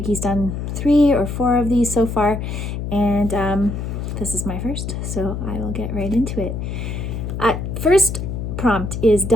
he's done 3 or 4 of these so far, and this is my first, so I will get right into it. First prompt is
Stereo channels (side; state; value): left; noise; hum, 5 dB below the sound